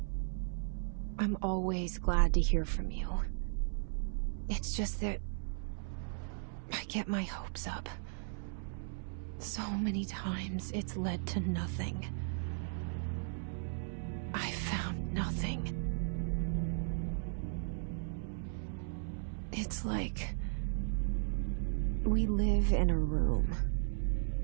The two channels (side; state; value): left; silent; 54 dB below the other